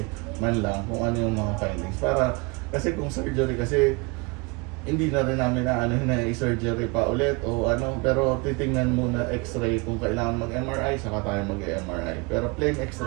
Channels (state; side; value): quieter; left; 28.0 dB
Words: man lang kung ano yung mga findings. Kasi kung surgery kasi hindi na rin namin na i-surgery pa ulit o pero titingnan muna x-ray kung kailangan mag-MRI, saka tayo mag-MRI. Pero plain